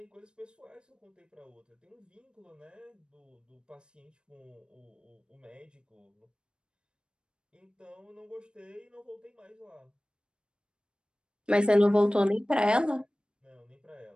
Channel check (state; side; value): late; left; 0.053 ms